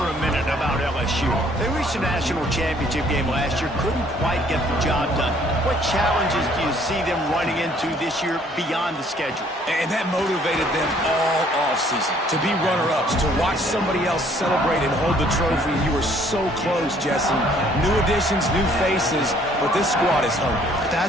a minute about LSU. They reached a national championship game last year, couldn't quite get the job done. What challenges do you see them running into this year beyond the schedule? And that motivated them all offseason. To be runner-ups, to watch somebody else celebrate and hold the trophy. You were so close, Jesse. New additions, new faces, but this squad is hungry.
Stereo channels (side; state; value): both; normal; correlation 0.61